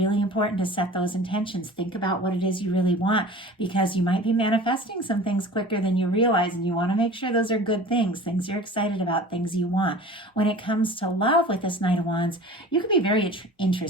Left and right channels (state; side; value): normal; both; correlation 0.40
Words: important to set those intentions. Think about what it is you really want, because you might be manifesting some things quicker than you realize, and you want to make sure those are good things you're excited about, things you want. When it comes to love with this Knight of Wands, you can be very